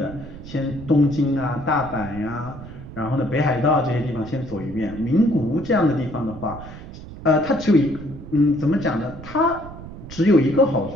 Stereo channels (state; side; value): noise; right; rumble, 14 dB below the sound